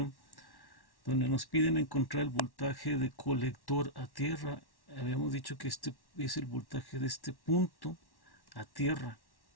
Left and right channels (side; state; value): right; late; 1.1 ms